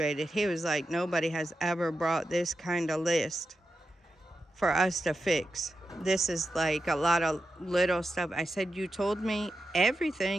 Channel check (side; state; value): both; normal; correlation 0.89